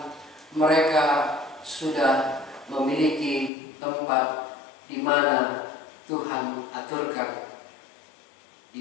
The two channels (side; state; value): right; drops out; at 3.5 s